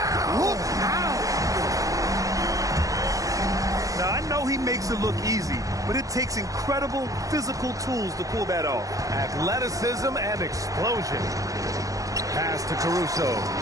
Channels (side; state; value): left; late; 0.17 ms